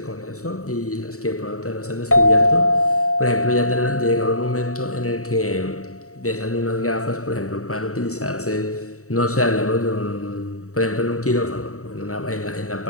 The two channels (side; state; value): right; late; 0.65 ms